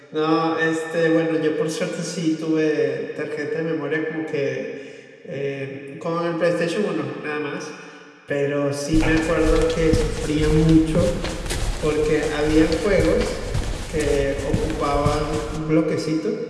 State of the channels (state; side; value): identical; both; correlation 1.00